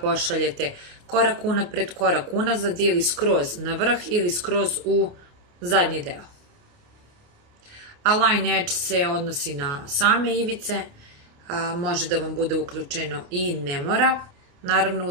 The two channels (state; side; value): late; left; 29 ms